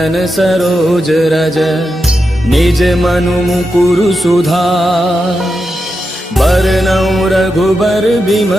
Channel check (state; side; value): normal; both; correlation 0.88